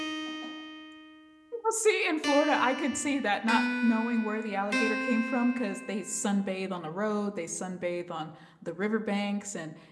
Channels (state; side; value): identical; both; correlation 1.00